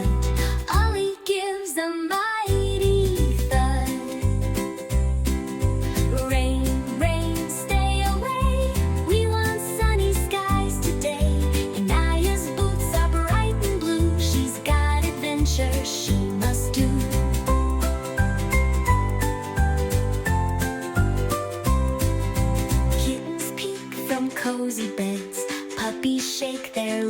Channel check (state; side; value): identical; both; correlation 1.00